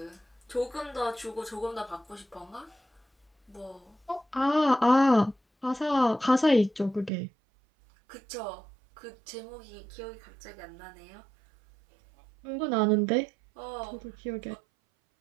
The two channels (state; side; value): drops out; left; at 7.1 s